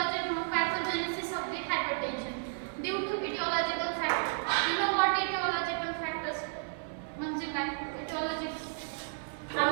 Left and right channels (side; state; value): left; silent; 56 dB below the other